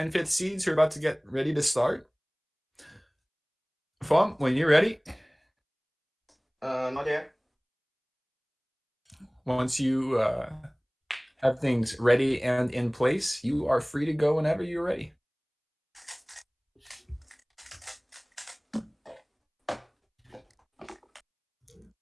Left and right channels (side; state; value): both; identical; correlation 1.00